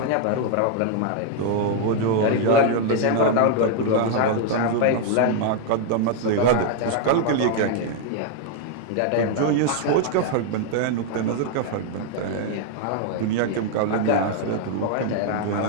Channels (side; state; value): both; different; correlation 0.00